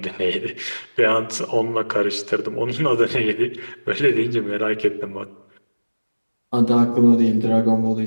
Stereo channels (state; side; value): inverted; both; correlation -1.00